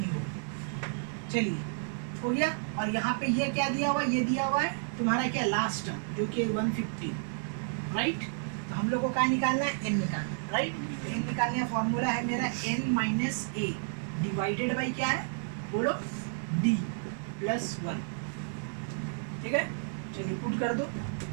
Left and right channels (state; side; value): silent; left; digital silence